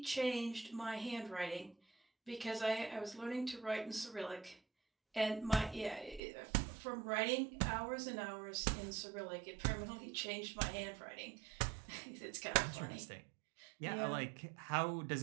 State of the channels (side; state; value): left; drops out; at 6.2 s